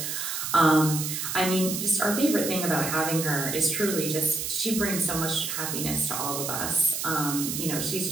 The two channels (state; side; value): noise; right; hiss, 3 dB below the sound